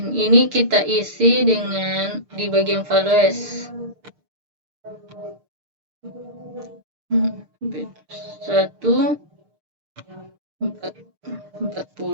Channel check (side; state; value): left; late; 6.6 ms